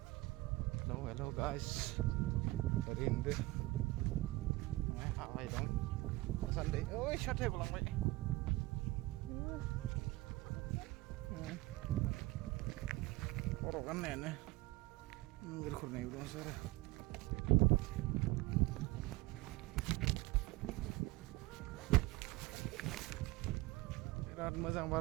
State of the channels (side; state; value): left; quieter; 20.5 dB